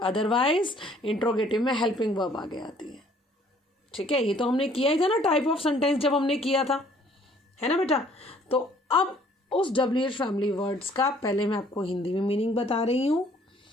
इंट्रोगेटिव में हेल्पिंग वर्ब आगे आती है. ठीक है, ये तो हमने किया ही था ना टाइप ऑफ सेंटेंस जब हमने किया था, है ना बेटा. तो अब उस WH फैमिली वर्ड्स का पहले मैं आपको हिंदी में मीनिंग बता रही हूँ,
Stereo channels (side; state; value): both; normal; correlation 0.59